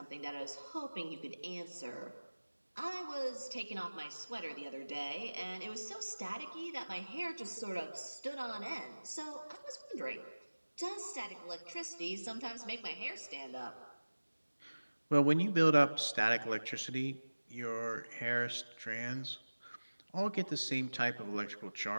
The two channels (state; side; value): inverted; both; correlation -1.00